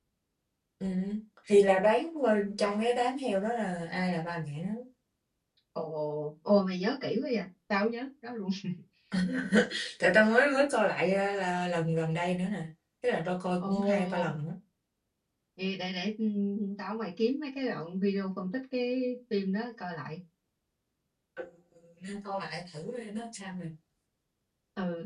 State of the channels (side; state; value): both; identical; correlation 1.00